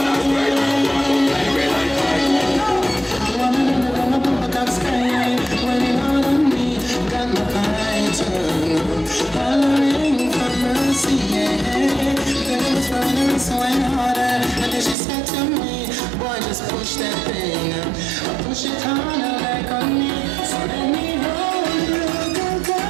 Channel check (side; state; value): left; drops out; at 15.0 s